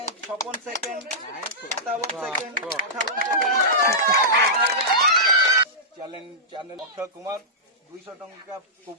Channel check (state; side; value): normal; both; correlation -0.15